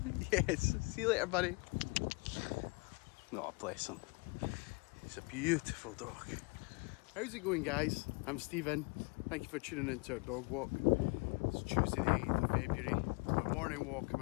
Yes. See you later, buddy. Oh, bless him. He's a beautiful dog. How's it going, guys? I'm Stephen. Thank you for tuning into our dog walk. It's Tuesday the 8th of February. Our morning walk, I'm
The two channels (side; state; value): right; quieter; 30.4 dB